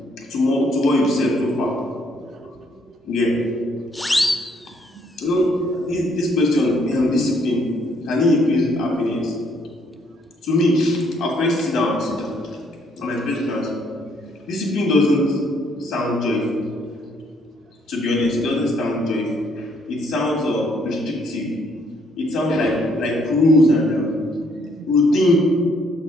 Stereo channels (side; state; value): both; normal; correlation 0.68